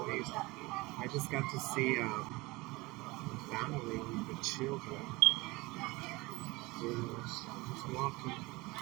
I just got to see a family with the children. Just walking.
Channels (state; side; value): quieter; left; 22.7 dB